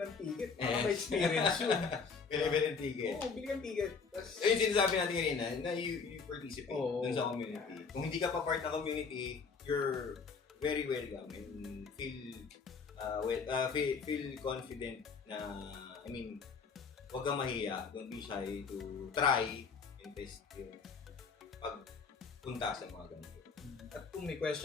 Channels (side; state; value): right; quieter; 5.3 dB